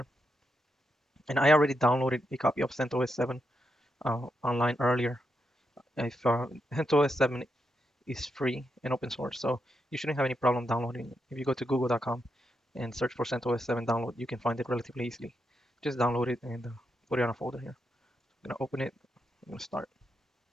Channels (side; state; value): both; normal; correlation 0.83